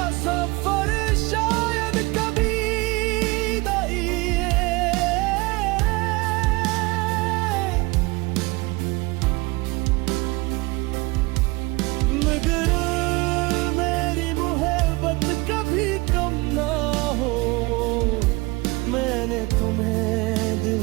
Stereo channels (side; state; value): left; quieter; 24.2 dB